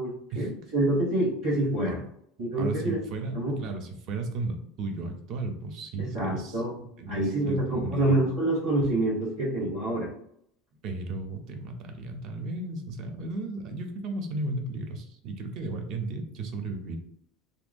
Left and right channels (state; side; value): normal; both; correlation 0.35